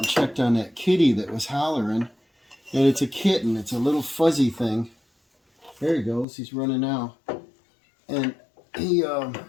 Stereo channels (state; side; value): drops out; right; at 6.2 s